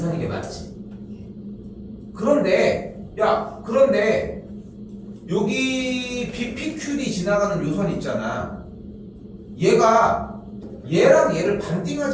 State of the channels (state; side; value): identical; both; correlation 1.00